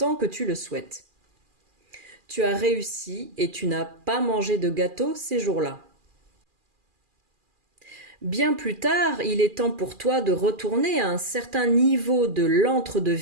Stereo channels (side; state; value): left; late; 2.4 ms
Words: que tu le souhaites. Tu as réussi et tu n'as pas mangé de gâteau ces jours-là. Bien plus tard, il est temps pour toi de retourner à un certain niveau de